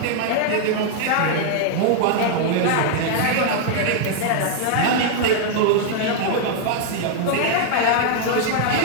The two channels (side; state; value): both; different; correlation 0.00